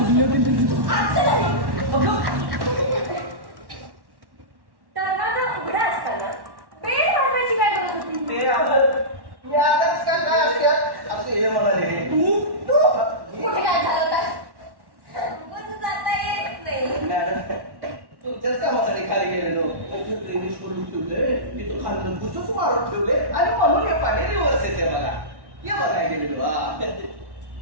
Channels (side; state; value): left; late; 1.1 ms